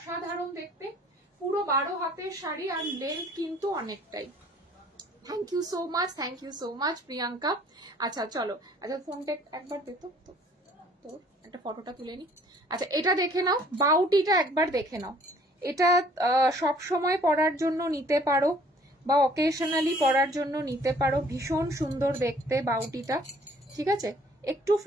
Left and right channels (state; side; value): normal; both; correlation 0.57